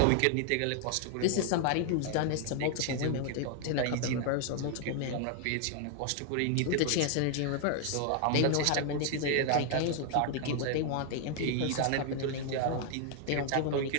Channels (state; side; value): different; both; correlation 0.00